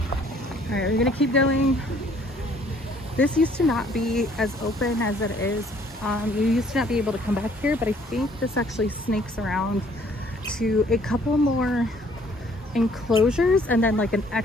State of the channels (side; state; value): both; normal; correlation 0.60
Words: Alright, we're gonna keep going. This used to not be as open as it is. You used to not be able to come back here, but I think this actually snakes around to a couple more enclosures and then like an